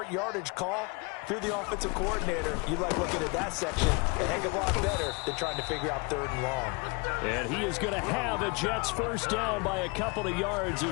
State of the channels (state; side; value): quieter; right; 30.0 dB